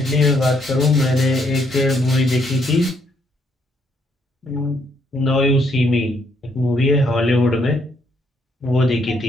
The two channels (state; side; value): normal; both; correlation 0.71